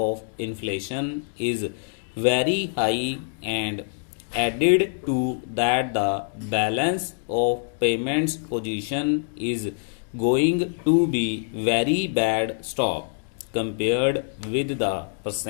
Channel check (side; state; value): right; silent; digital silence